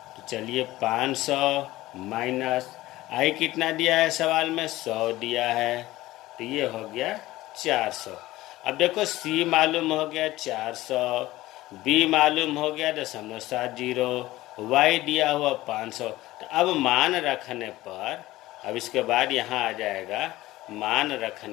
तो चलिए 500 माइनस आई कितना दिया है सवाल में, 100 दिया है, तो ये हो गया 400। अब देखो c मालूम हो गया 400, b मालूम हो गया 0.70, y दिया हुआ 500। तो अब मान रखने पर, अब इसके बाद यहाँ आ जाएगा मान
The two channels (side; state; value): right; quieter; 17.2 dB